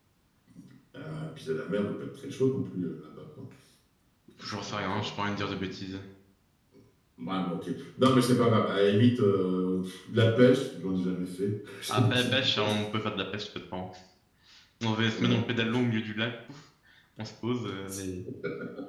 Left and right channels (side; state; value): both; identical; correlation 1.00